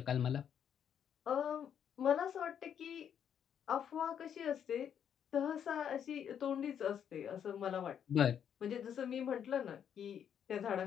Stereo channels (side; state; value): right; quieter; 8.7 dB